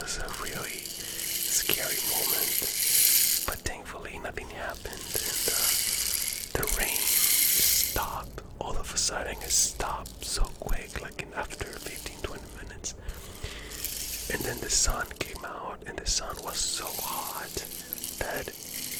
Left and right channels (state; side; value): identical; both; correlation 1.00